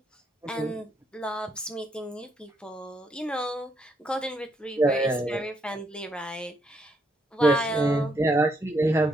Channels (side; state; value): both; normal; correlation 0.75